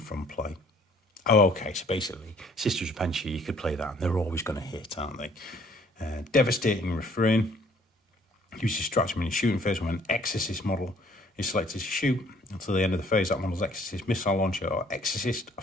from play. Oh, okay, so basically, Sister's Repentia, you could play that, and they're always going to hit, aren't they? Devastating Refrain. Use your stratagem in your shooting phase when an Exorcist model is selected to shoot. Until the end of the phase, that model's Exorcist missile launcher or Exorcist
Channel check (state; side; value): normal; both; correlation 0.59